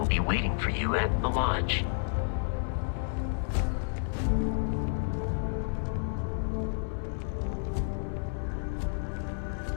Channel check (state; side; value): silent; right; 57 dB below the other